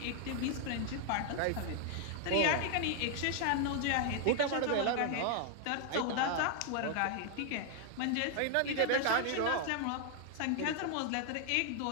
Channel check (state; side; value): different; both; correlation 0.00